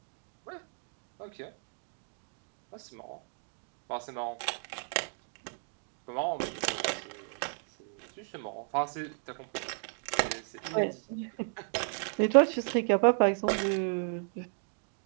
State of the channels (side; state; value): left; silent; 55 dB below the other